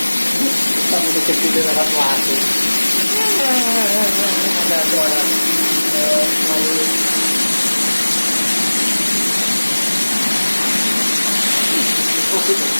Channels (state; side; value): inverted; both; correlation -1.00